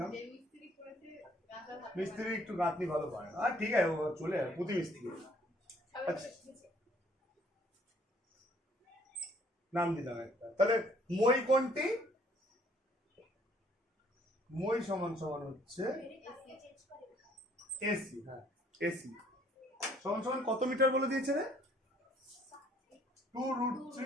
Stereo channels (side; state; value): both; normal; correlation 0.61